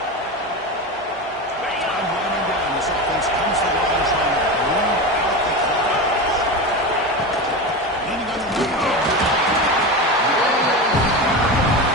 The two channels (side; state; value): both; normal; correlation 0.23